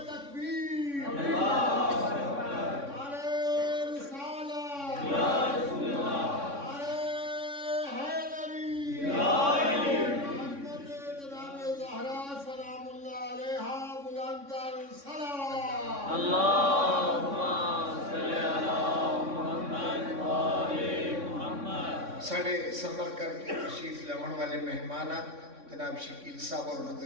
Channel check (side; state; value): left; late; 3.6 ms